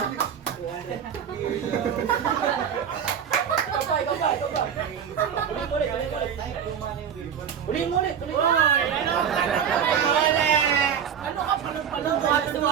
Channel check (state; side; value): quieter; left; 8.0 dB